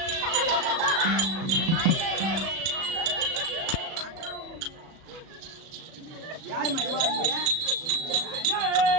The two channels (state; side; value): late; left; 37 ms